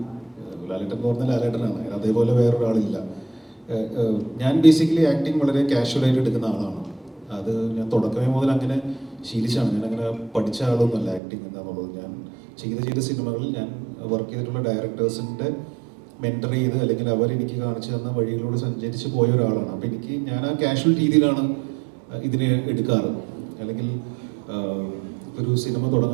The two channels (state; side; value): drops out; left; at 11.2 s